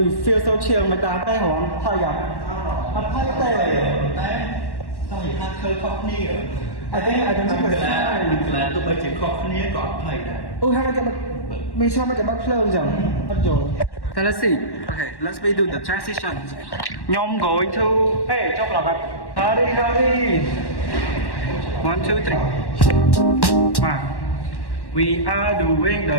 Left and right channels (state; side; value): late; right; 1.1 ms